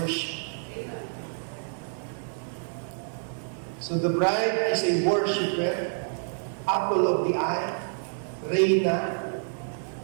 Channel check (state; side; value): silent; left; digital silence